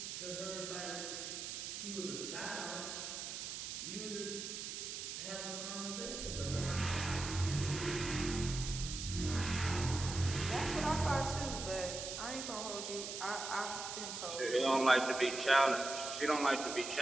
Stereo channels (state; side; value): noise; right; hiss, 6 dB below the sound